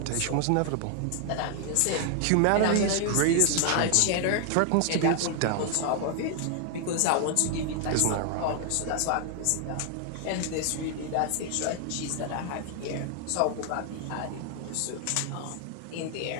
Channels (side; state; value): both; different; correlation 0.00